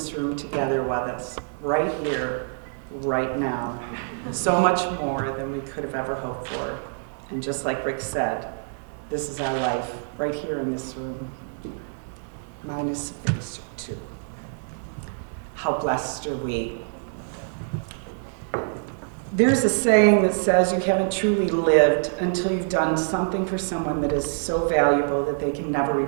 room together with us, right here, right now. So much more than we could have ever hoped for. And just like Rick said, this is our life, right here in this room. Mine is phase 2. How blessed are we? There's a saying that says you haven't truly lived until you've done something for someone that is so valuable that they can never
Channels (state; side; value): silent; left; digital silence